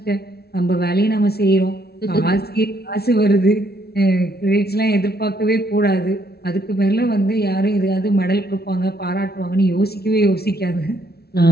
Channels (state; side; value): late; right; 0.46 ms